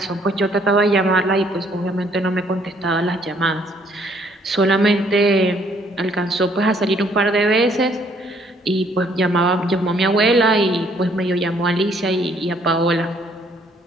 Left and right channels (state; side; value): normal; both; correlation 0.64